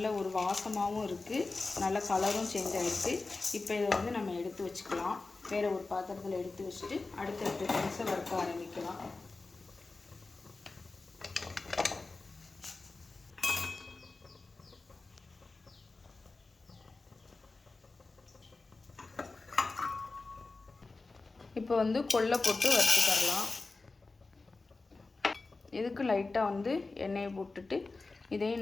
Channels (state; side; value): quieter; right; 3.6 dB